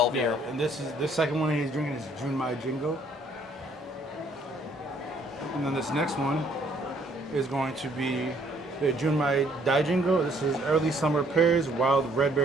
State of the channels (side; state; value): both; normal; correlation 0.64